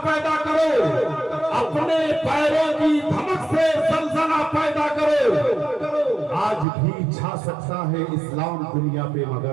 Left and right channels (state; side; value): drops out; left; at 6.7 s